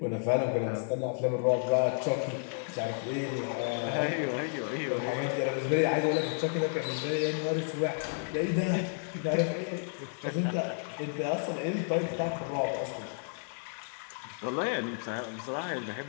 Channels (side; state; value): right; silent; digital silence